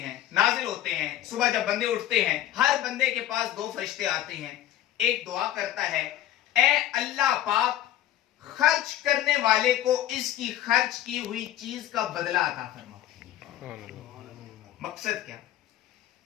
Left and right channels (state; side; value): quieter; right; 12.8 dB